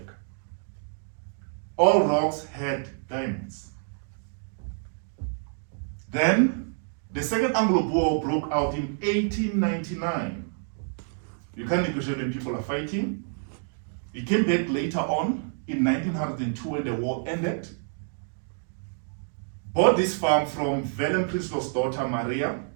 All rocks had diamonds. Then, the Second Anglo-Boer War broke out in 1899. You can't negotiate when people are fighting. He came back later on in 1902 when the war ended. Bought this farm from Willem Prinsloo's daughter Maria,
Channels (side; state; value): left; silent; 60 dB below the other